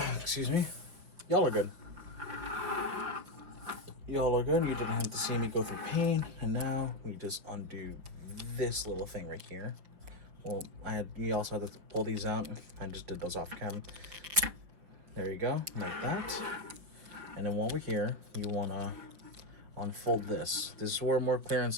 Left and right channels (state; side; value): late; left; 6.0 ms